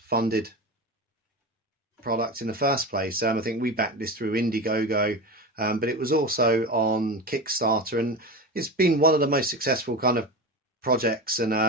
product in the first place. I think we backed this through Indiegogo, but it was also on Kickstarter, and it's been one of the most successful kind of projects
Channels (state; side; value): normal; both; correlation 0.25